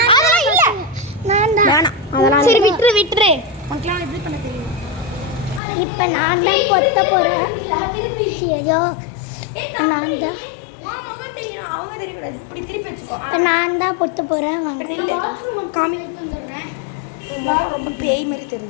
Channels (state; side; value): drops out; right; at 5.6 s